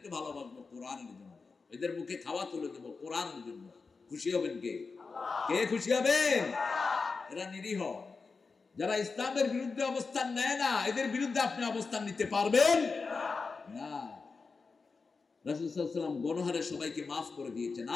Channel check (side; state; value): right; quieter; 4.5 dB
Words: ভালোবাসবো কোরআনের জন্য, এদের মুখে খাওয়া তুলে দেব কোরআনের জন্য। খুশি হবেন কে? কে খুশি হবেন? এরা নিরীহ, যারা ইসলামের বিরুদ্ধে অবস্থান নেয় না, এদের বিরুদ্ধে আপনি অবস্থান নিতে পারবেন না। রাসূল সাল্লাল্লাহু আলাইহি ওয়াসাল্লাম গণহারে সবাইকে মাফ করে দিয়েছেন,